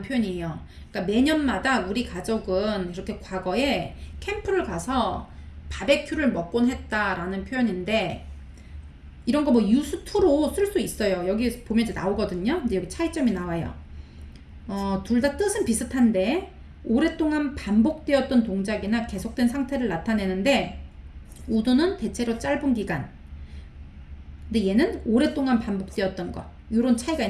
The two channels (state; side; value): identical; both; correlation 1.00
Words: 표현이에요. 그러니까 매년마다 우리 가족은 이렇게 과거에 캠프를 가서 바베큐를 먹곤 했다라는 표현인데 이런 거 뭐 used to로 쓸 수 있어요. 여기 보면 이제 나오거든요. 근데 여기 차이점이 나와요. 둘 다 뜻은 비슷한데 오랫동안 반복되었던 동작이나 계속된 상태를 나타내는데 would는 대체로 짧은 기간, 근데 얘는 오랫동안 반복되었던 거, 이런 차이가